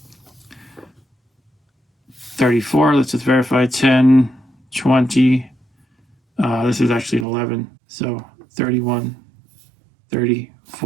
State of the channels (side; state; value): left; drops out; at 7.2 s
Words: 34. Let's just verify. 10, 20. This is actually an 11. So 31,